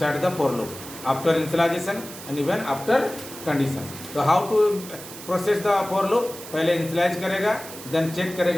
the for loop after initialization and even after condition. तो how to process the for loop, पहले इनिशियलाइज करेगा, देन चेक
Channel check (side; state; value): right; noise; hiss, 13 dB below the sound